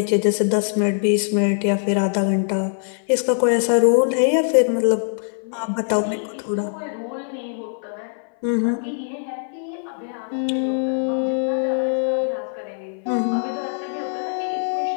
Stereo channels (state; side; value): silent; right; 59 dB below the other